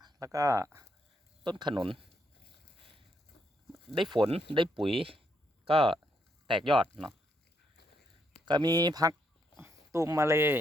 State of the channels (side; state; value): both; normal; correlation 0.77